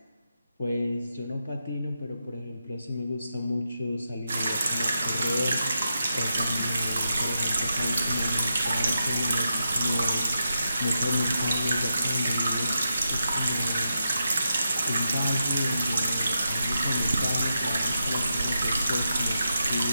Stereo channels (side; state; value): both; inverted; correlation -0.85